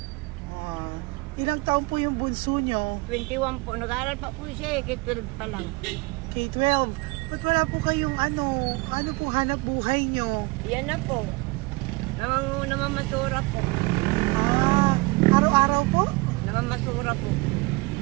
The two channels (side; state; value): left; quieter; 25.3 dB